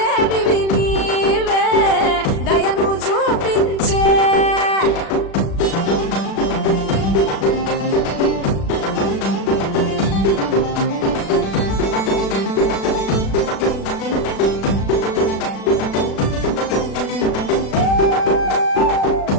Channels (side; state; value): right; late; 36 ms